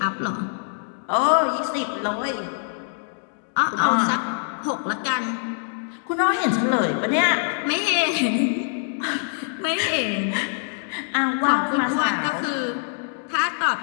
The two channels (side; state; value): right; silent; 63 dB below the other